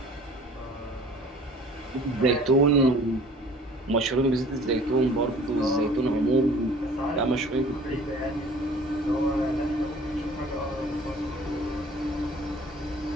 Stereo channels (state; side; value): normal; both; correlation 0.49